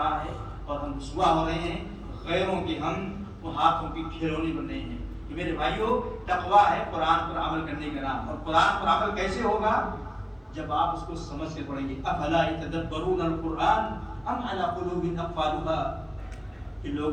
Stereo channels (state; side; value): identical; both; correlation 1.00